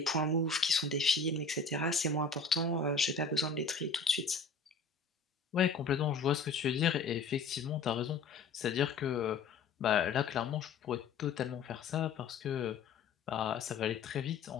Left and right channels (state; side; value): quieter; right; 4.6 dB